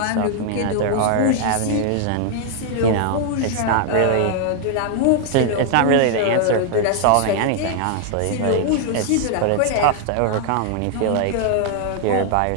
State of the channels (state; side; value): different; both; correlation 0.00